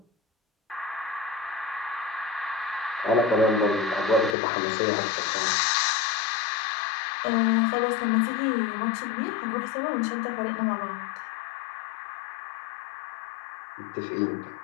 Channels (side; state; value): right; drops out; at 4.4 s